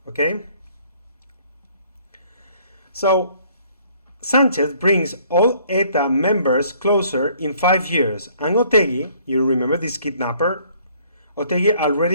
okay? So Sanchez brings all ETA members closer in 5 years, and Otegi, you remember this kidnapper? Otegi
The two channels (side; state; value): both; inverted; correlation -0.60